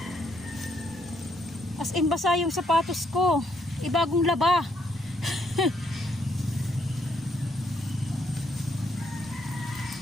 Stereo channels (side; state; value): both; normal; correlation 0.73